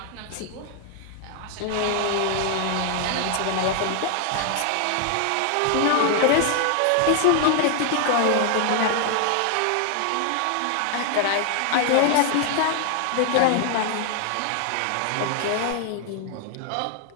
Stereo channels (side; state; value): both; different; correlation 0.00